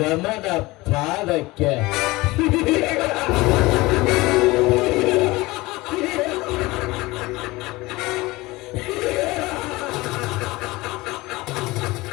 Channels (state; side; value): quieter; right; 21.0 dB